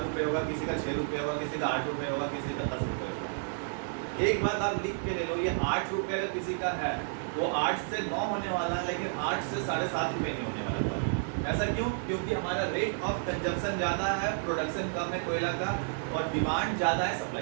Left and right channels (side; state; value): left; silent; digital silence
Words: होगा, किसी का 6 रुपये होगा, किसी का 8 रुपये होगा, किसी का 10 रुपये होगा। एक बात आप लिख के ले लो, ये 8 रुपये का किसी का है वो 8 से 9 होने वाला है, लेकिन 8 से 7.5 रुपये नहीं होने वाला था। ऐसा क्यों? क्योंकि हमारा रेट ऑफ कंजप्शन ज़्यादा है, प्रोडक्शन कम है कोयला का और डिमांड ज़्यादा है